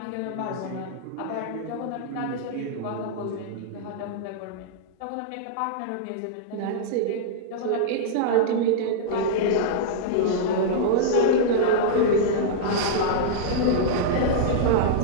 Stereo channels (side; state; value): both; different; correlation -0.02